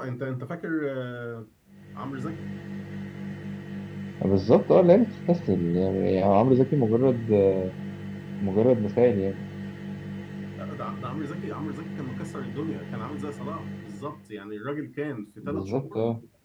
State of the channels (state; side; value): identical; both; correlation 1.00